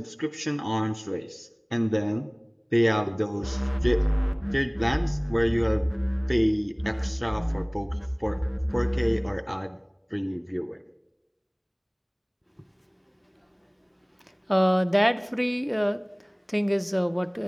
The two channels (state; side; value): identical; both; correlation 1.00